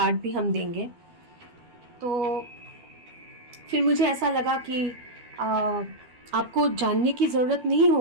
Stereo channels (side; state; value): left; late; 12 ms